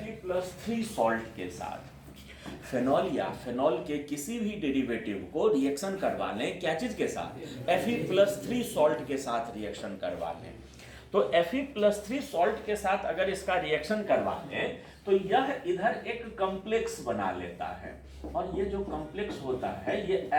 सॉल्ट के साथ, फेनॉल या फेनॉल के किसी भी डेरिवेटिव को रिएक्शन करवा लें क्या चीज के साथ? Fe+3 सॉल्ट के साथ रिएक्शन करवा लें, तो Fe+3 सॉल्ट के साथ अगर इसका रिएक्शन करवा लें तो यह इधर एक कॉम्प्लेक्स बना लेता है, और ये जो कॉम्प्लेक्स होता है ये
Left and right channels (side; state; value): both; identical; correlation 1.00